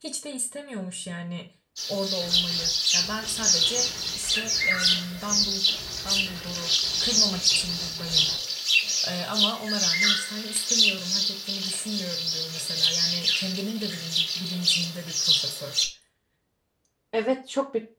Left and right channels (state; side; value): identical; both; correlation 1.00